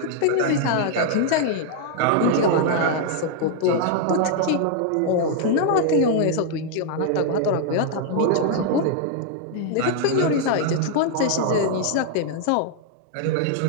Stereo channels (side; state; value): both; different; correlation 0.00